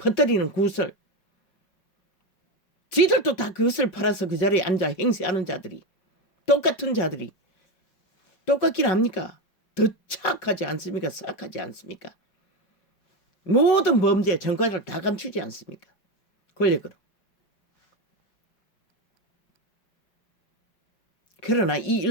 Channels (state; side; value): late; right; 5.4 ms